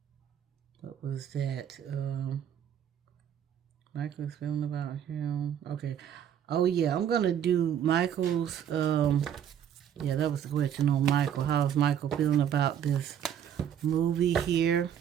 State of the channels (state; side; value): quieter; left; 9.3 dB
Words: what was that? Michael's feeling about him. Okay. Oh, yeah, I'm going to do Michael's, yeah, that was the question on Michael. How's Michael feeling about this movie here?